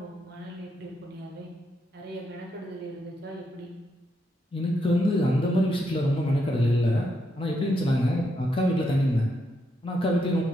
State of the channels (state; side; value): normal; both; correlation 0.80